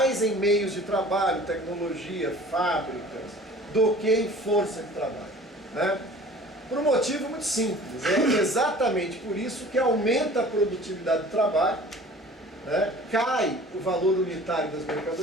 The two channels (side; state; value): both; normal; correlation 0.46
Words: em meios de trabalho, tecnologia, fábricas, do que em força de trabalho. Né? Por um motivo muito simples. É exatamente por isso que aumenta a produtividade do trabalho, né? Cai o valor unitário das